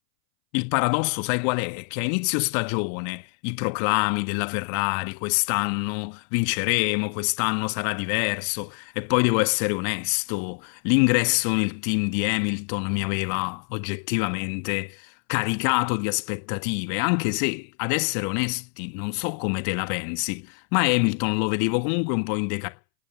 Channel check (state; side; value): silent; right; 62 dB below the other